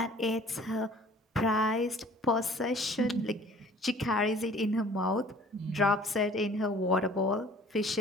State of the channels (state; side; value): normal; both; correlation 0.50